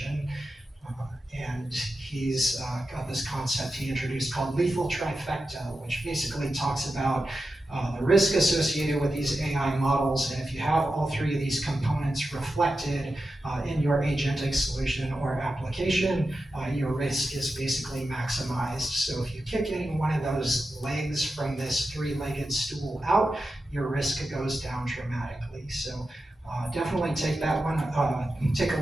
And he's got this concept he introduced called lethal trifecta, which basically talks about the risk associated with these AI models. And if you have all 3 of these components reflected in your agentic solution or application, your risk is basically maximized. So if you kick any one of those legs from this 3-legged stool out, your risk goes down dramatically. So definitely take that one, take a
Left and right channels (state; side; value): normal; both; correlation 0.91